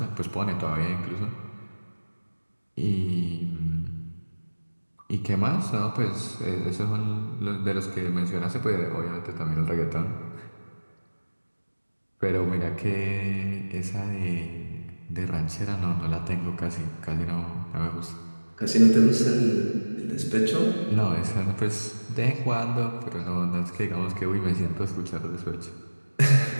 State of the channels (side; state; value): both; inverted; correlation -1.00